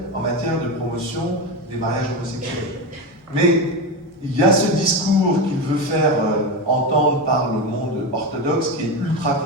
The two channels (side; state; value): both; normal; correlation 0.17